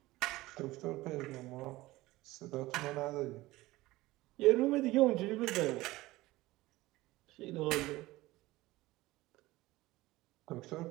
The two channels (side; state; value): left; quieter; 18.7 dB